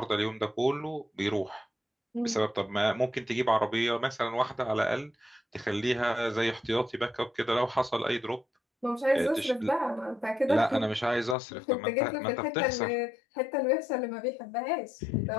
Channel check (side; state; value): right; drops out; at 11.4 s